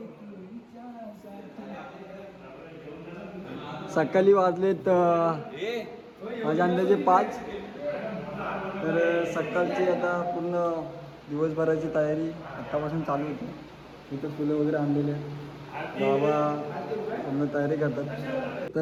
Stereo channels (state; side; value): identical; both; correlation 1.00